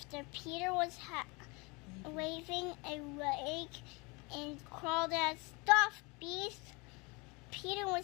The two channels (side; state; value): right; quieter; 27.8 dB